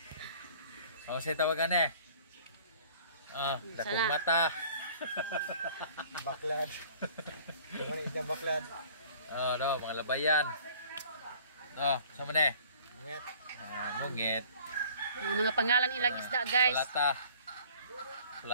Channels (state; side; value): inverted; both; correlation -0.52